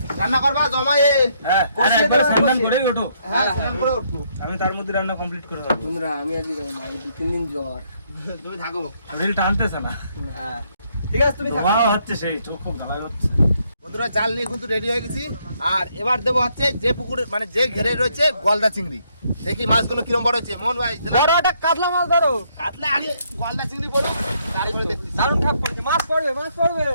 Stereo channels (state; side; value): inverted; both; correlation -0.72